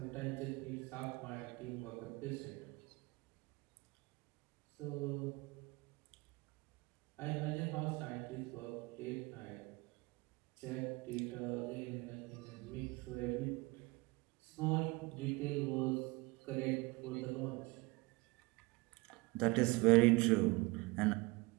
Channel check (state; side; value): quieter; left; 24.3 dB